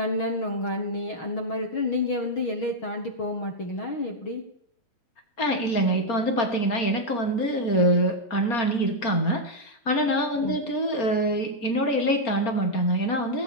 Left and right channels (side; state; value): right; late; 4.3 ms